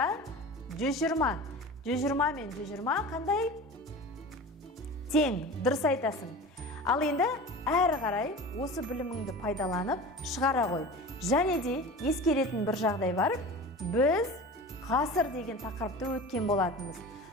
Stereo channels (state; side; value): normal; both; correlation 0.34